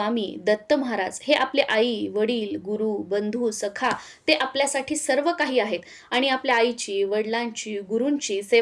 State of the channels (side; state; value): both; identical; correlation 1.00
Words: दत्त महाराज हे आपले आई वडील गुरु बंधू सखा ते आपल्यासाठी सर्व काही आहेत आणि आपल्या आईची वडिलांची गुरूंची